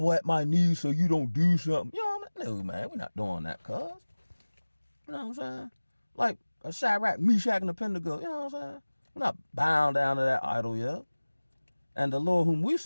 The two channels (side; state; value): both; inverted; correlation -1.00